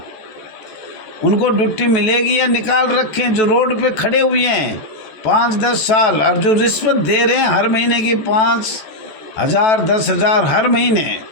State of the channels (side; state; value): right; late; 14 ms